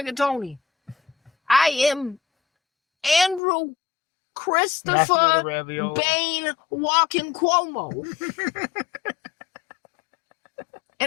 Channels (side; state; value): right; drops out; at 3.4 s